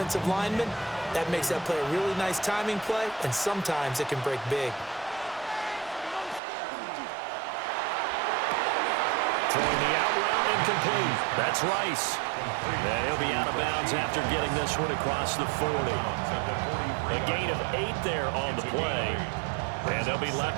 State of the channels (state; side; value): drops out; left; at 6.4 s